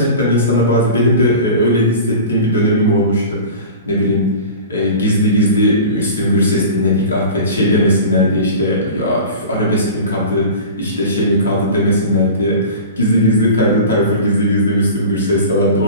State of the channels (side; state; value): both; inverted; correlation -0.36